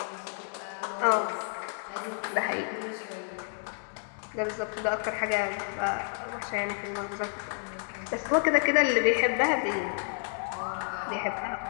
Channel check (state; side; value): silent; right; 56 dB below the other